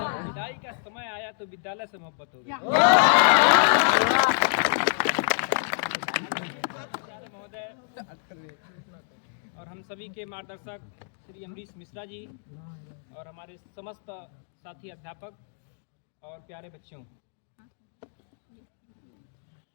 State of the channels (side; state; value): right; silent; digital silence